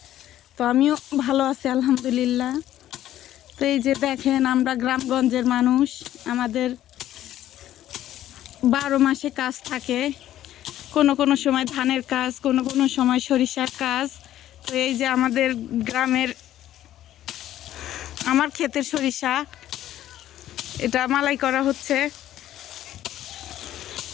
তো আমিও ভালো আছি আলহামদুলিল্লাহ। তো এই যে দেখেন, আমরা গ্রামগঞ্জের মানুষ, আমাদের 12 মাসে কাজ থাকে। কোনো কোনো সময় ধানের কাজ, কোনো কোনো সময় সরিষার কাজ। তো এই যে আমাদের গ্রামের আমার ক্ষেতের সরিষা, এটা মালাই করা হচ্ছে।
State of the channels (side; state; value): right; quieter; 12.7 dB